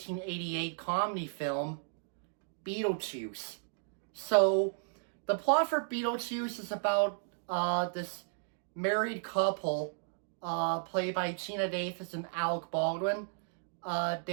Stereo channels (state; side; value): silent; left; digital silence